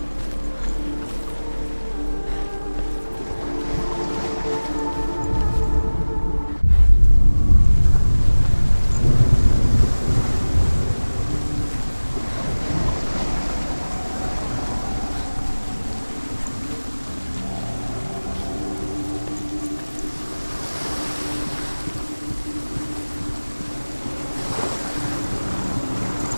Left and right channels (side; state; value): both; inverted; correlation -1.00